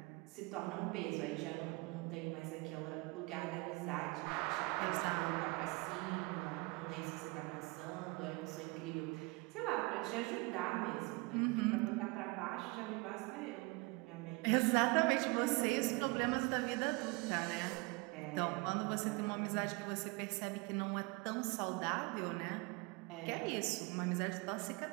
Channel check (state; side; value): quieter; left; 26.8 dB